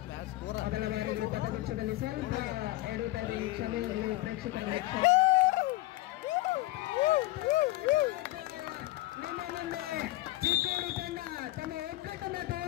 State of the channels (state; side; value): quieter; right; 18.1 dB